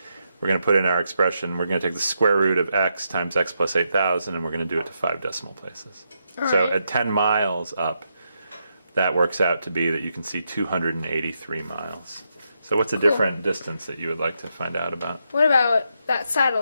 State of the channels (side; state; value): both; inverted; correlation -0.82